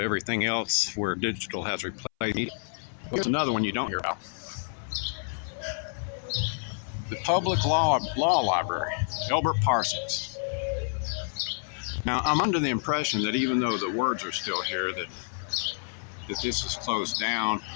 else where digital has replaced media. Here's another one you don't hear about. The Public Law Library, Elbert Parsons. Now, I'm under the impression that even though the words are still here, that this is closed down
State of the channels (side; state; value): right; silent; 59 dB below the other